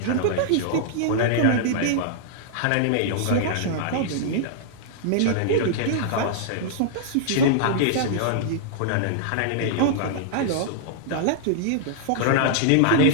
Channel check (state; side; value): different; both; correlation -0.01